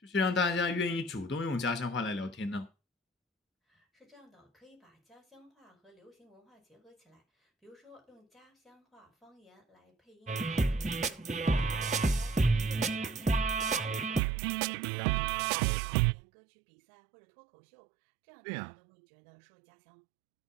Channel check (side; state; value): left; drops out; at 14.2 s